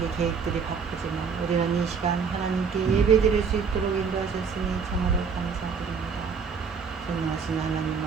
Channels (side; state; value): left; quieter; 5.9 dB